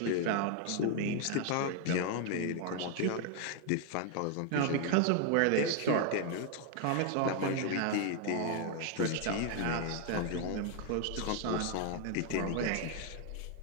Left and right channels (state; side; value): different; both; correlation 0.00